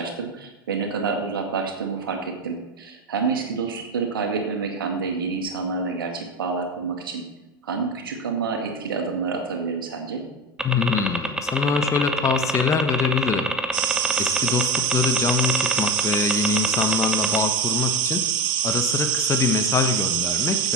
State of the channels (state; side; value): normal; both; correlation 0.21